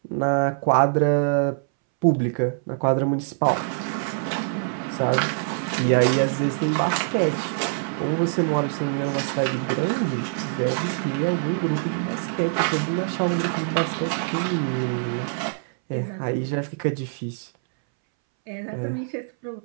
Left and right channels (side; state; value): left; silent; 62 dB below the other